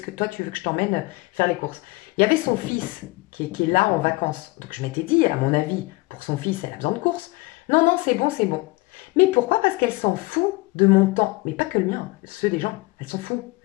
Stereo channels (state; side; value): quieter; right; 23.7 dB